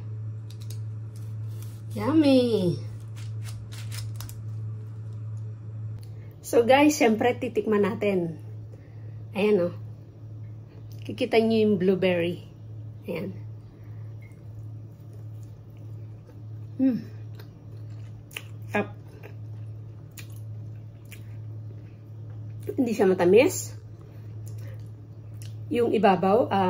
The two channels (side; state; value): both; identical; correlation 1.00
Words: Yummy! So guys, syempre titikman natin. Ayan o. Kikita nyo yung blueberry. Ayan. Sarap. Hindi siya matamis. Yung ibabaw,